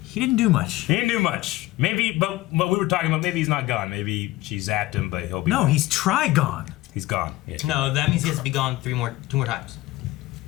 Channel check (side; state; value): right; quieter; 18.1 dB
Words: he didn't do much. He didn't do much. Maybe, but we were talking about maybe he's not gone. Maybe she zapped him, but he'll be. No, he's Trigon. He's gone. Yeah. No, that means he has to be gone 2 more times.